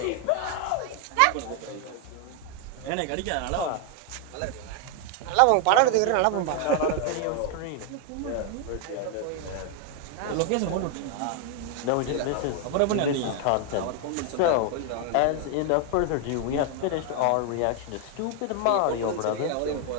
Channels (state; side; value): different; both; correlation 0.00